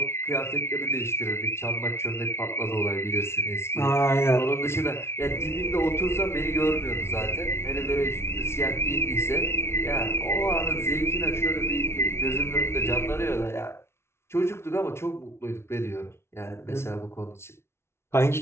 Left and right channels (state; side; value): late; right; 0.12 ms